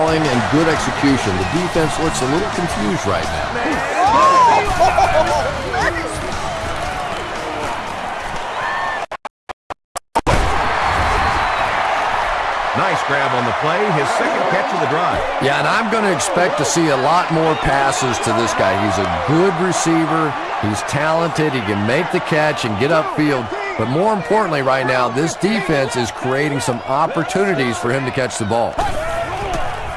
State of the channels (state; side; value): identical; both; correlation 1.00